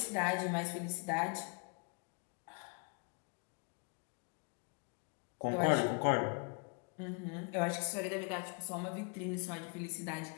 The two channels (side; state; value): right; quieter; 36.1 dB